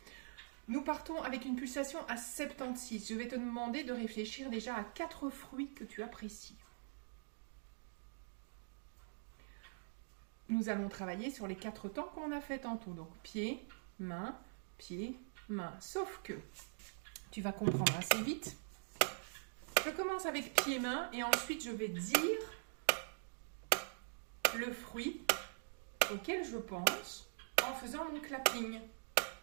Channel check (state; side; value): silent; left; digital silence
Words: Nous partons avec une pulsation à 76. Je vais te demander de réfléchir déjà à 4 fruits que tu apprécies. Nous allons travailler sur les 4 temps qu'on a fait tantôt. Donc pied, main, sauf que tu vas comprendre assez vite. Je commence avec pied-main et ensuite je vais dire le fruit auquel je pense en faisant mon clapping.